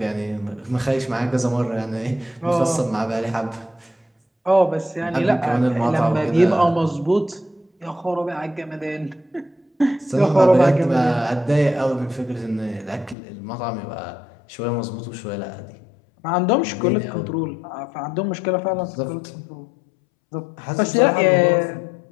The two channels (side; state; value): right; drops out; at 13.2 s